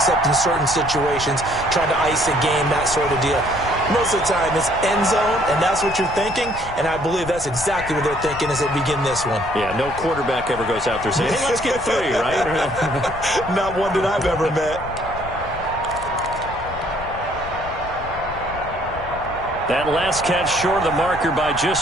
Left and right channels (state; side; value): noise; left; rumble, 13 dB below the sound